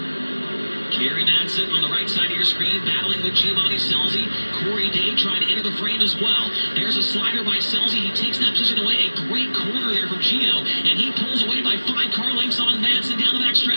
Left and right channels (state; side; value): inverted; both; correlation -1.00